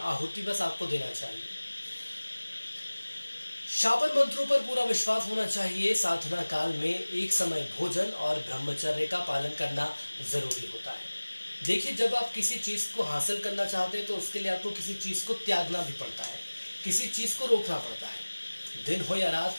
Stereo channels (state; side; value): inverted; both; correlation -1.00